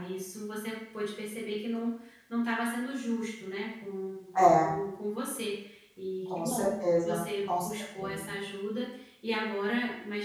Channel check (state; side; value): identical; both; correlation 1.00